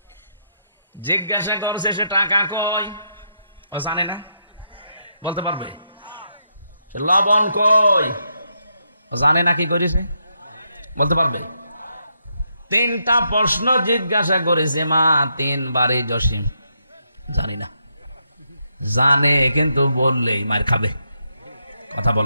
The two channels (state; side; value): inverted; both; correlation -0.80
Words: জিজ্ঞাসা করছে সে টাকা কই? জানে না। বলতে পারবে? লবণ কই? জানে না। কি করেছে? বলতে পারবে? 3টা প্রশ্ন জিজ্ঞাসা করেছে মা 3 বারে। জসিম জানি না। জানে কিন্তু বললেই মার খাবে। কথা